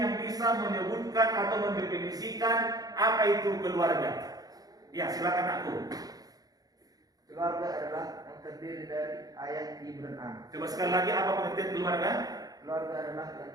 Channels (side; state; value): left; late; 0.18 ms